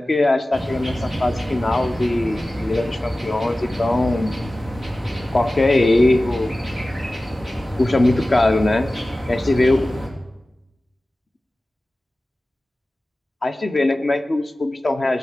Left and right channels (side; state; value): both; normal; correlation 0.96